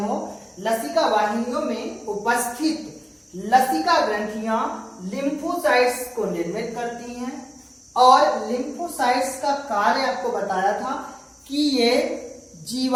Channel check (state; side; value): identical; both; correlation 1.00